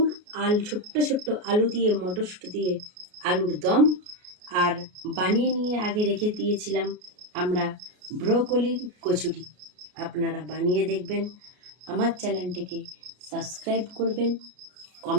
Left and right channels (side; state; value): left; late; 33 ms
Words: ছোট্ট ছোট্ট আলু দিয়ে, মটরশুঁটি দিয়ে আলুর দম, আর বানিয়ে নিয়ে আগে রেখে দিয়েছিলাম আমরা ব্রোকলির কচুরি। আপনারা বানিয়ে দেখবেন, আমার চ্যানেলটিকে সাবস্ক্রাইব করবেন,